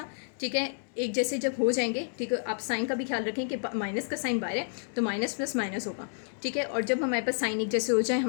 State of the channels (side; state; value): right; silent; digital silence